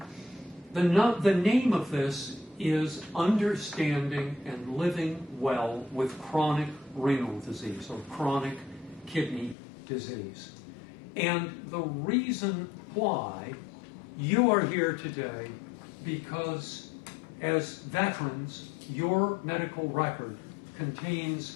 The name of this is Understanding and Living Well with Chronic Renal Disease, or Chronic Kidney Disease. And the reason why you are here today, because as veterans, your medical record contains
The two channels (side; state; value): right; drops out; at 9.6 s